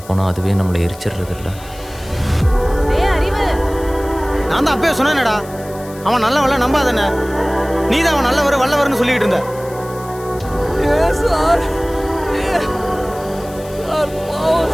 போனால் அதுவே நம்மளை எரிச்சிடுறது இல்லை. நான் தான் அப்பயே சொன்னேனடா, அவன் நல்லவன்ல நம்பாதானே. நீ தான் அவன் நல்லவர் வல்லவர்னு சொல்லிக்கிட்டு இருந்த.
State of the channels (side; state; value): left; noise; hiss, 20 dB below the sound